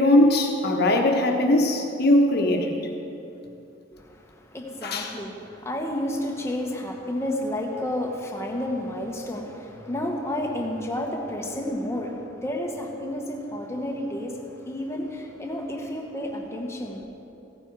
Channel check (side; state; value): both; normal; correlation 0.50